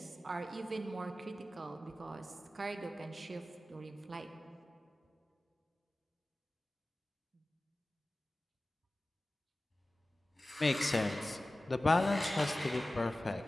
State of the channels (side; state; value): both; normal; correlation 0.96